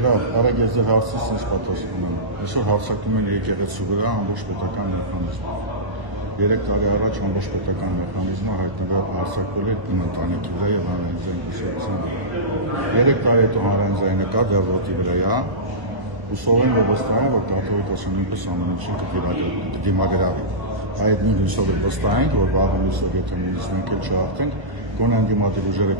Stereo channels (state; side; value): late; left; 1.1 ms